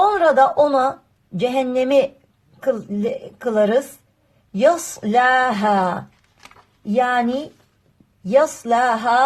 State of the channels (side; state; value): both; identical; correlation 1.00